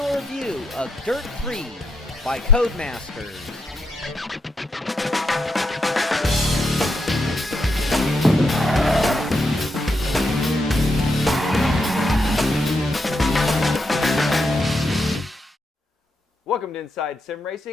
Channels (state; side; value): normal; both; correlation 0.81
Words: review of Dirt 3 by Codemasters. Welcome to Inside Sim